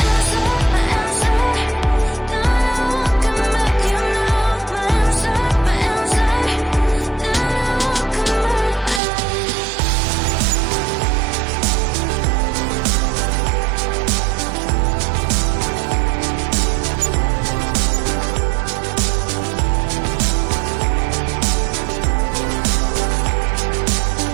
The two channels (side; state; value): left; drops out; at 9.0 s